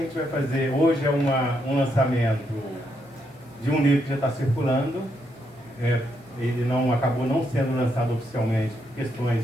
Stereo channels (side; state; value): both; normal; correlation 0.78